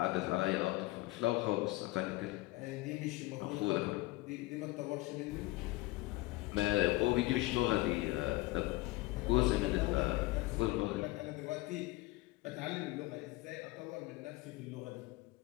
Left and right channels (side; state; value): right; quieter; 20.2 dB